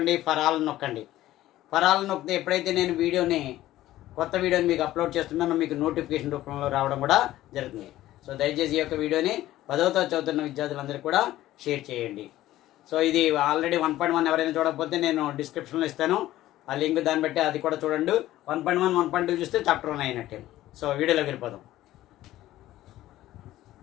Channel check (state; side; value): quieter; right; 14.8 dB